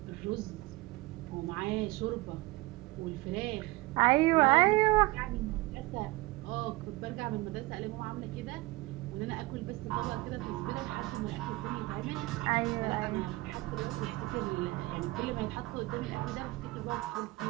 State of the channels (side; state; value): left; quieter; 21.2 dB